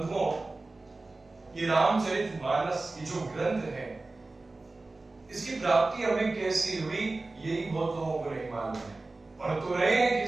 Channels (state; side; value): quieter; left; 3.3 dB